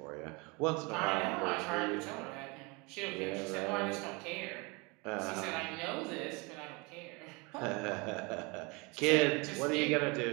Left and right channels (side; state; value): left; quieter; 28.1 dB